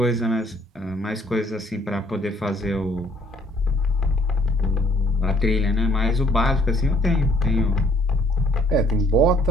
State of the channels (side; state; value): both; normal; correlation 0.62